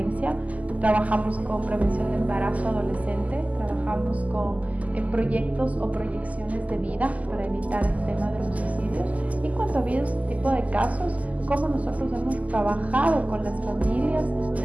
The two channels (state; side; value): late; left; 0.073 ms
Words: trabajamos con prevención de embarazo adolescente, trabajamos con proyectos o proyecciones de vida para evitar el tema de los suicidios. Y cuando ha habido este tipo de casos, cómo nosotros hemos trabajado con las familias